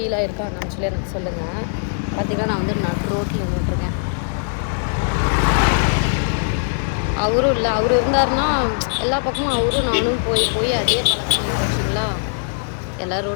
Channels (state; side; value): silent; right; digital silence